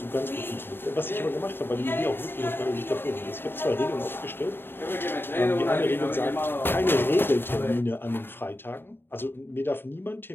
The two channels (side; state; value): right; late; 0.10 ms